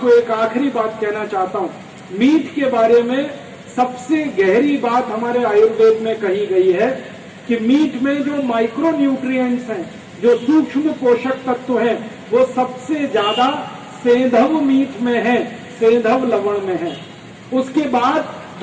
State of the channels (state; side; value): identical; both; correlation 1.00